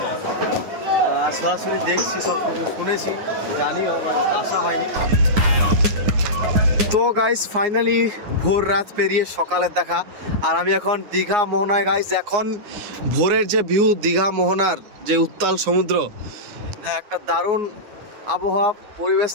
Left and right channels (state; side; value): late; left; 9.7 ms